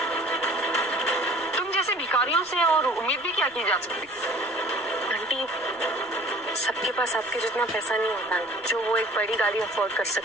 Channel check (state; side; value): noise; left; rumble, 30 dB below the sound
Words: तुम जैसे भिखारियों से और उम्मीद भी क्या की जा सकती? आंटी, सबके पास आपके जितना पैसा नहीं होता जो वो एक बड़ी गाड़ी अफोर्ड कर